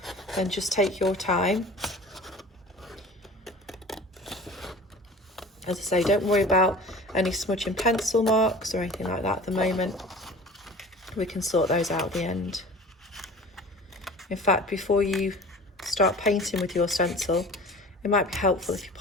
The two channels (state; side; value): normal; both; correlation 0.41